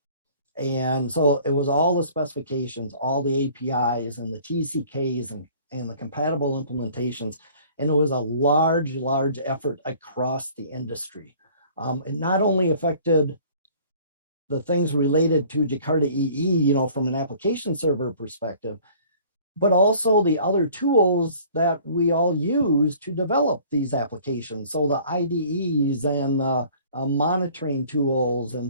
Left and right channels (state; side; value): inverted; both; correlation -0.52